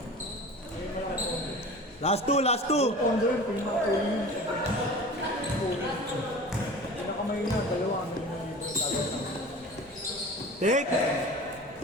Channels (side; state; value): both; normal; correlation 0.38